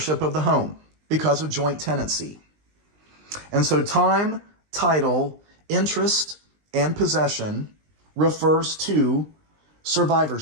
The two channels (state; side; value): late; left; 20 ms